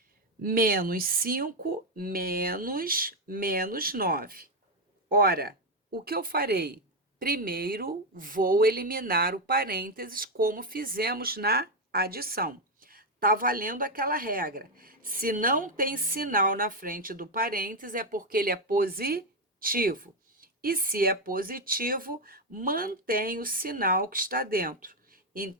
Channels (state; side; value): normal; both; correlation 0.05